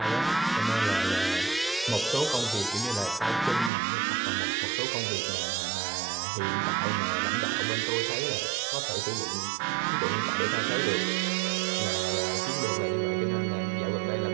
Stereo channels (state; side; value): drops out; left; at 3.7 s